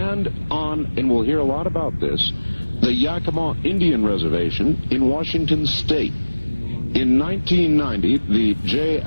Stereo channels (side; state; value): both; inverted; correlation -1.00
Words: we'll hear a lot about this, the Yakima Indian Reservation in Washington State. In 1990, the J.